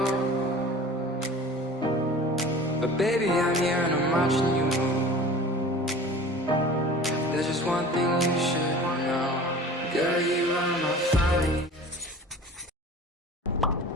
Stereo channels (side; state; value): both; normal; correlation 0.41